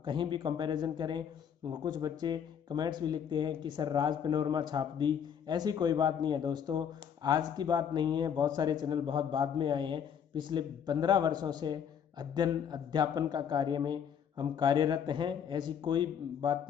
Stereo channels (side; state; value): right; quieter; 8.1 dB